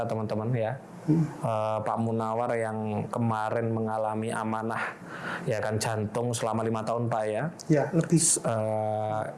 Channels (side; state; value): both; identical; correlation 1.00